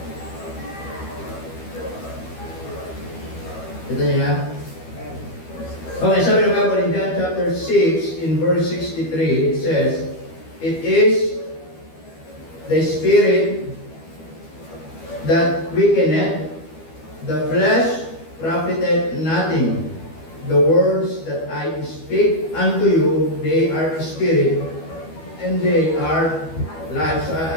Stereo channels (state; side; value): late; right; 12 ms